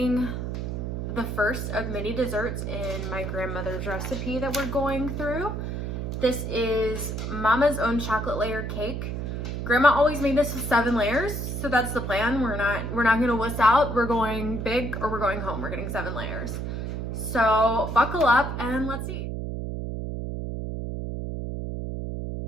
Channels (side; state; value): right; noise; hum, 4 dB below the sound